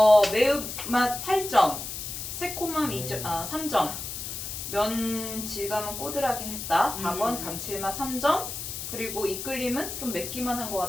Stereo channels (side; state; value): left; noise; hiss, 7 dB below the sound